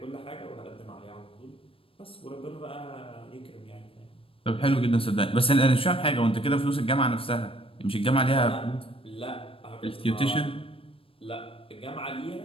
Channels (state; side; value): late; right; 0.27 ms